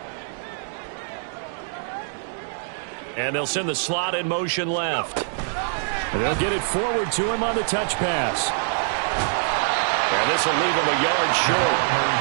And they'll send the slot in motion left. And they'll get it forward to him on the touch pass. And this will leave him a yard short.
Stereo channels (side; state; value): left; silent; digital silence